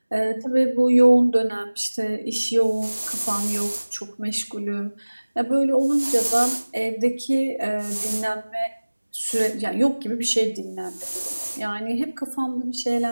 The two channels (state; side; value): inverted; both; correlation -1.00